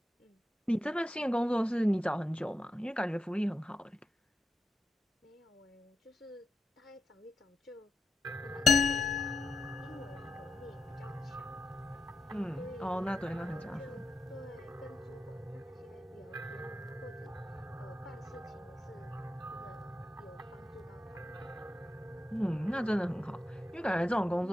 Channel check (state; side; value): normal; both; correlation 0.86